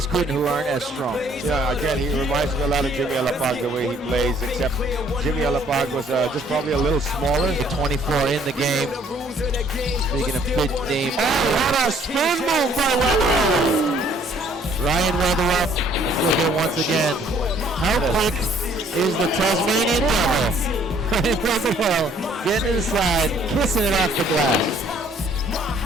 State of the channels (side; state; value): both; normal; correlation 0.61